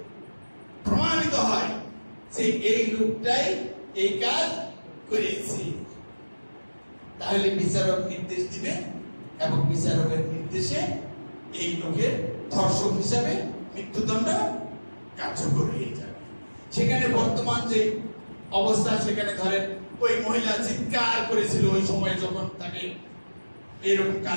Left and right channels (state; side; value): inverted; both; correlation -1.00